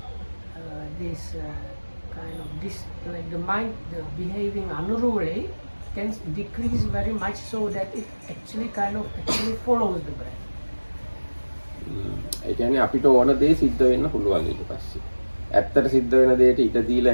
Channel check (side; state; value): both; inverted; correlation -1.00